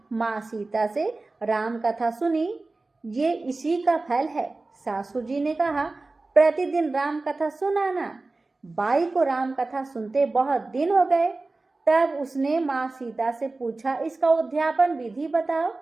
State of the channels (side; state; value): left; quieter; 3.3 dB